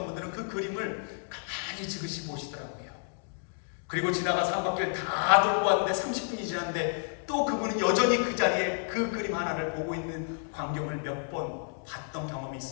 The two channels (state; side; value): silent; right; digital silence